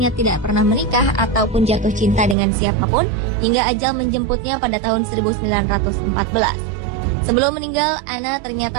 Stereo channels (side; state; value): left; drops out; at 2.4 s